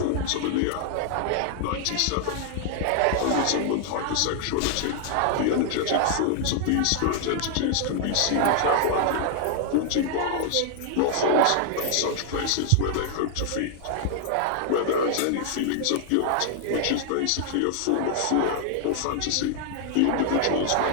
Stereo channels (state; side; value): different; both; correlation 0.00